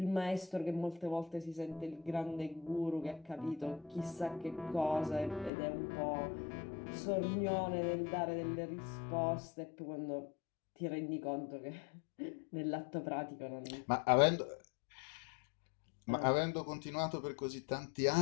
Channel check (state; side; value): drops out; right; at 5.5 s